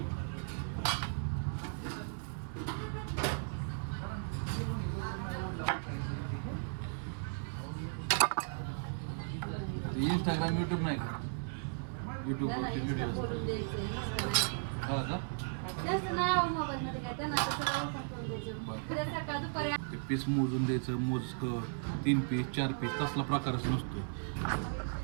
इंस्टाग्राम युट्यूब नाही का, युट्यूबवरती व्हिडिओ हा का. ते पीस मोजून द्यायचं, मोजकं 3 पीस 4 पीस तसला प्रकारच नसतो.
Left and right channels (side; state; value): left; silent; 54 dB below the other